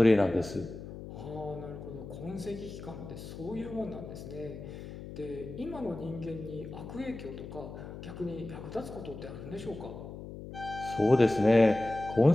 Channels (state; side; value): noise; left; hum, 11 dB below the sound